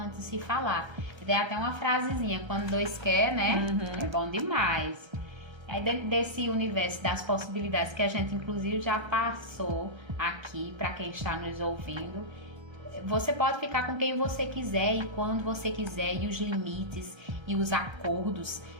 se falar. Tem até uma frasezinha, quando dois quer, né? É bom demais. Aí dentro desse universo das possibilidades que a gente inclusive já passou aqui para quem está nos ouvindo, você pode ficar com quem você quiser e quando você quiser, e os limites e os acordos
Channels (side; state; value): left; late; 1.3 ms